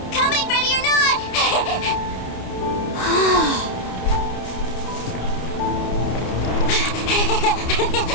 Coming, ready or not?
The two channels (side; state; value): right; late; 29 ms